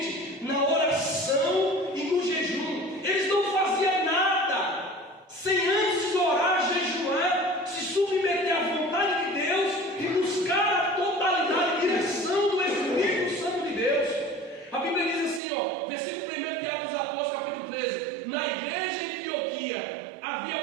na oração e no jejum. Eles não faziam nada sem antes orar, jejuar, se submeter à vontade de Deus e buscar a totalidade e direção do Espírito Santo de Deus. A Bíblia diz assim, versículo 1 de Atos dos Apóstolos, capítulo 13: na igreja em Antioquia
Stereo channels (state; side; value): drops out; left; at 15.4 s